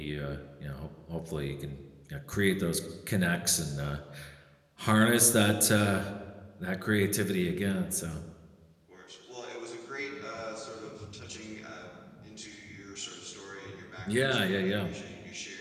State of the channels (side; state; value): both; identical; correlation 1.00